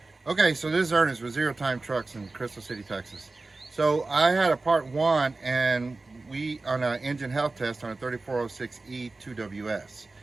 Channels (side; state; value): left; quieter; 3.4 dB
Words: Okay, so this is Ernest with Zero Time Trucks in Crystal City, Texas. So I had a part one, and we on an engine health test on a 3406E 2WS.